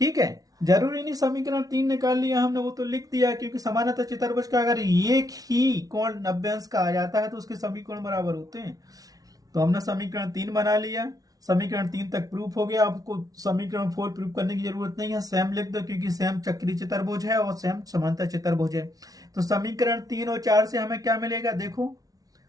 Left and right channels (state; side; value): late; left; 0.18 ms